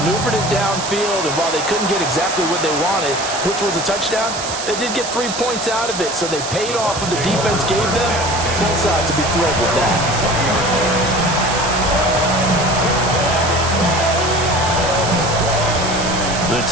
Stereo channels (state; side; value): noise; right; hiss, 7 dB below the sound